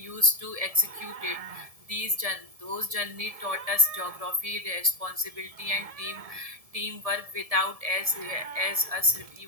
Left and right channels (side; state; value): left; late; 1.7 ms